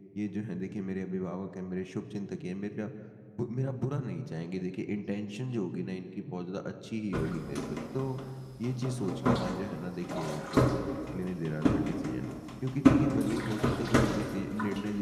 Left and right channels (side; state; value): both; identical; correlation 1.00